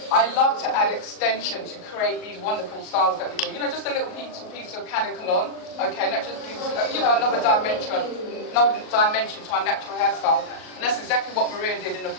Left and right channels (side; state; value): right; late; 38 ms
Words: I love to add extension to create these wonderful styles that we do. You know, just a little piece of canicolon, okay, and that just gives, another dimension to our natural hairstyle. And that's exactly what Maria did in the